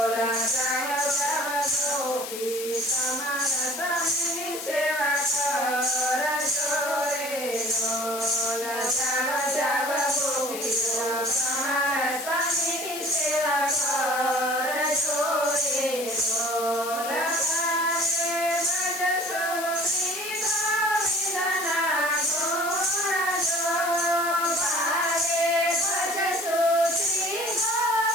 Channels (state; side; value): noise; left; hiss, 8 dB below the sound